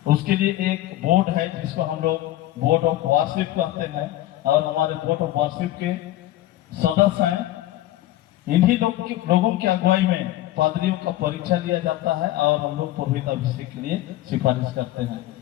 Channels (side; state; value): right; quieter; 14.9 dB